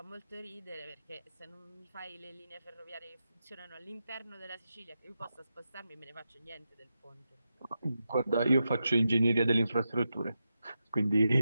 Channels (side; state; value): both; inverted; correlation -0.88